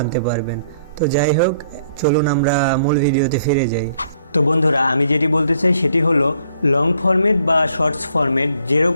পারবেন। তো যাই হোক, চলুন আমরা মূল ভিডিওতে ফিরে যাই। তো বন্ধুরা, আমি যেটি বলতে চাই সেটি হলো লং ফরম্যাট বা শর্টস ফরম্যাট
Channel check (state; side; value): inverted; both; correlation -0.65